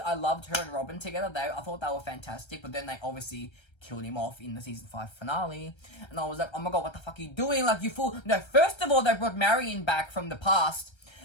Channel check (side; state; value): right; late; 1.3 ms